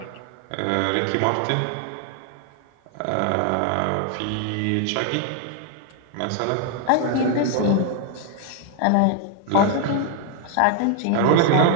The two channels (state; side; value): different; both; correlation 0.00